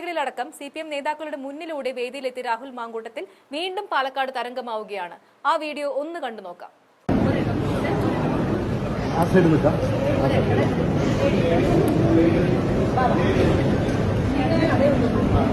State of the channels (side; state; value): both; identical; correlation 1.00